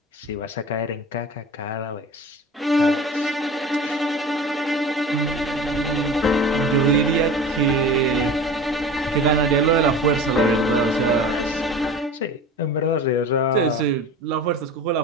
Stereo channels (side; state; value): both; normal; correlation 0.37